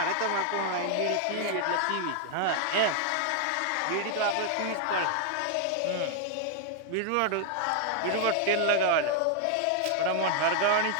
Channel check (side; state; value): both; different; correlation 0.00